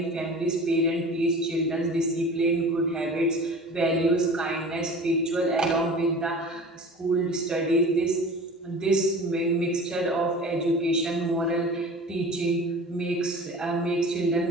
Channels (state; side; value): normal; both; correlation 0.39